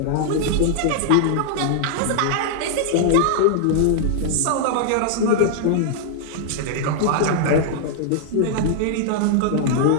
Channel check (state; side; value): different; both; correlation -0.01